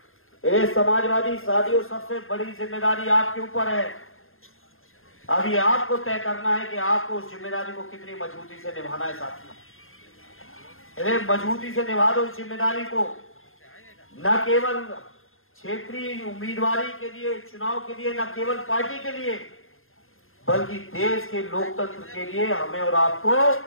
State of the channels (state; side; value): late; right; 0.60 ms